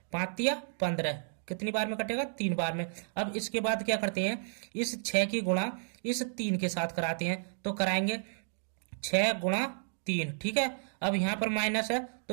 5 तिया 15, कितनी बार में कटेगा, 3 बार में। अब इसके बाद क्या करते हैं, इस 6 की गुणा इस 3 के साथ कराते हैं, तो कराएंगे 6 गुणा 3, ठीक है। अब यहाँ पर माइनस है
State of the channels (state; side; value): silent; left; digital silence